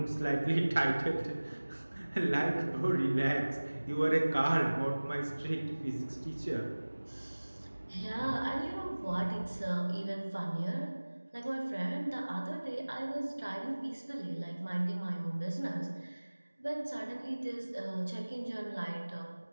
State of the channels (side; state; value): both; inverted; correlation -1.00